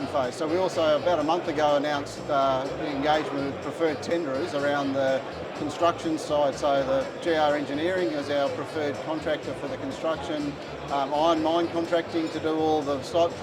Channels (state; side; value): identical; both; correlation 1.00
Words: phase. So we also about a month ago announced engagement with preferred tenderers around the construction side. So the GR Engineering is our preferred contractor for the construction, Iron Mine Contracting to do all the site